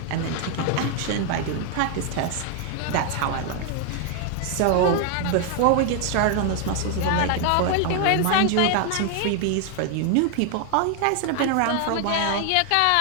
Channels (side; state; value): both; different; correlation 0.00